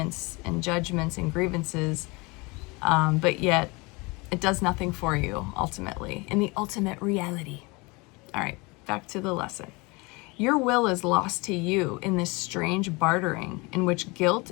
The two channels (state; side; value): quieter; right; 26.2 dB